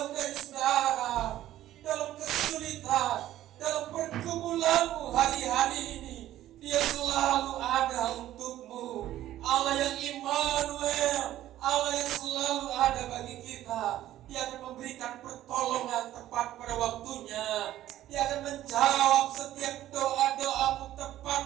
dari saudara. Dalam kesulitan, dalam pergumulanmu hari-hari ini, Dia selalu ada untukmu. Allah yang Immanuel, Allah yang selalu ada bagi kita. Dia akan memberikan pertolongan tepat pada waktunya. Dia akan menjawab setiap doa-doamu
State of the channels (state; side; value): quieter; left; 13.4 dB